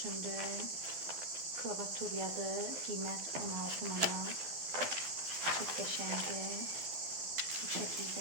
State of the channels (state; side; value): late; left; 12 ms